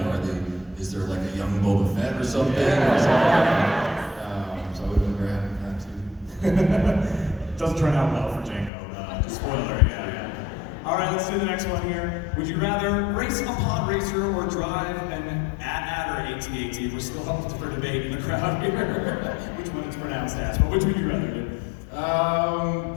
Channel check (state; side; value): drops out; right; at 8.7 s